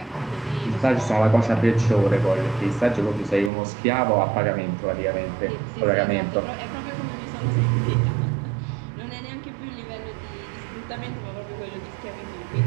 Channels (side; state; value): left; drops out; at 3.5 s